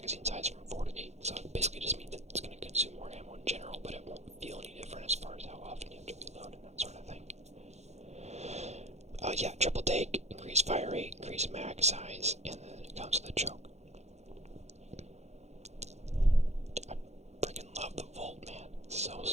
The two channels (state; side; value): late; left; 0.32 ms